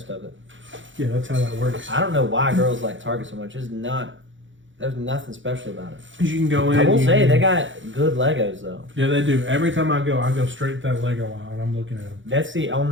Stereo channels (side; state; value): left; late; 0.55 ms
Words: of it. Yeah, that's how that works. I don't know why girls like Target so much. There's nothing special about it. You can go in. I will say, they got good Legos, though. Yeah, they do. Every time I go straight to that Lego aisle, and I'm looking at them. That's the